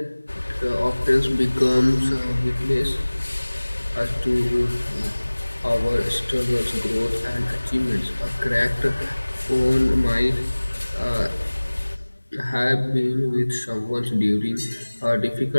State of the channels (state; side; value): inverted; both; correlation -1.00